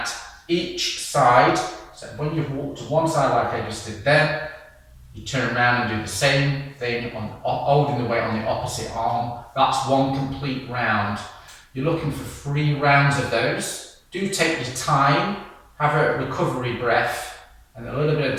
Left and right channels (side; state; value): both; identical; correlation 1.00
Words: each side. So when you've walked to one side like I just did there, you turn around and do the same thing, holding the weight on the opposite arm. That's one complete round. You're looking for 3 rounds of those. Do take your time, have a recovery breath, and a little bit